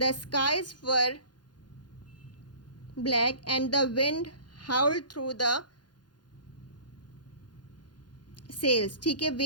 skies were black and the wind howled through the sails. ठीक है,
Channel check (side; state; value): right; late; 0.70 ms